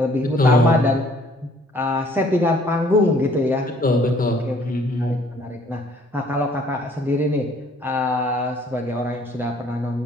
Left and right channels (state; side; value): normal; both; correlation 0.60